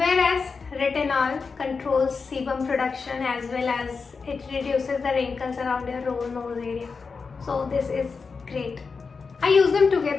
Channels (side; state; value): right; quieter; 4.9 dB